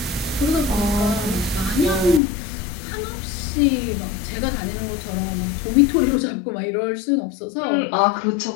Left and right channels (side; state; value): right; drops out; at 2.2 s